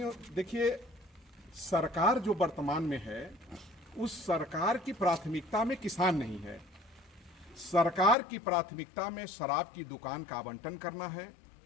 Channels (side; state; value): right; drops out; at 8.2 s